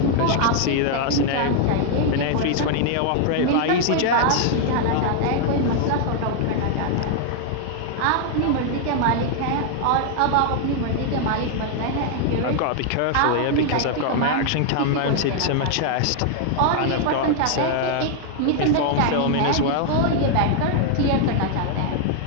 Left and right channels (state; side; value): different; both; correlation 0.00